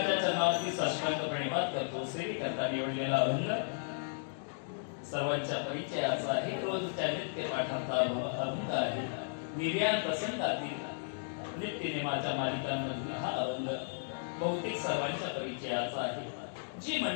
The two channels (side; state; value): right; silent; digital silence